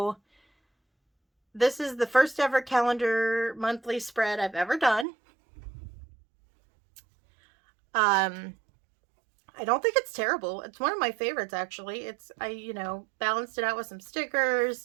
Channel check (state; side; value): drops out; left; at 5.1 s